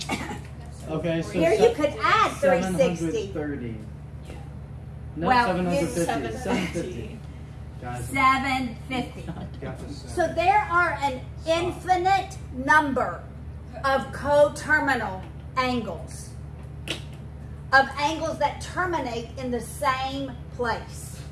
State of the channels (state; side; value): identical; both; correlation 1.00